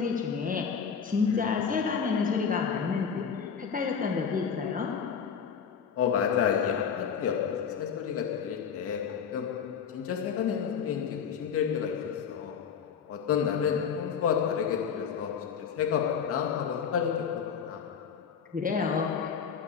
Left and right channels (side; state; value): right; quieter; 6.9 dB